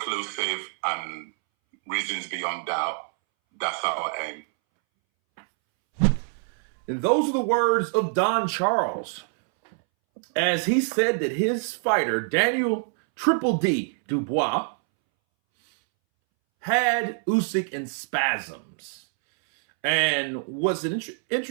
and reasons beyond doubt. That's our aim. And those are the words of Don Charles, as he said that his fighter, Daniel Triple D Dubois, had Usyk in spasms. And what's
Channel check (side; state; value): left; silent; 61 dB below the other